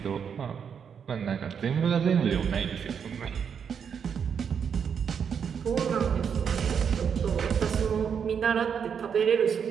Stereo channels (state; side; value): quieter; left; 7.2 dB